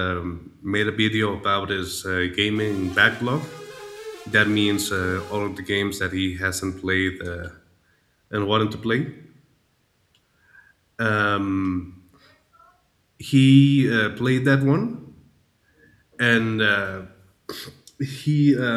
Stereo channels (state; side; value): identical; both; correlation 1.00